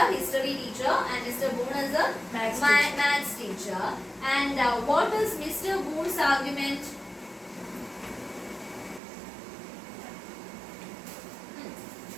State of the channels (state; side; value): drops out; left; at 9.0 s